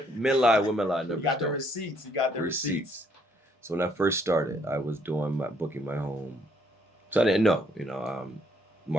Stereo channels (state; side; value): normal; both; correlation 0.68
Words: lie, numbers You got the don't. receipts. You got the receipts. So when I first started, I was booking my home. So I didn't know,